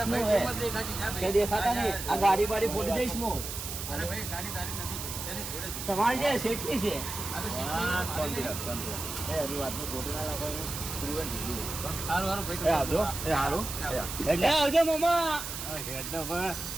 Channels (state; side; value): noise; right; hiss, 7 dB below the sound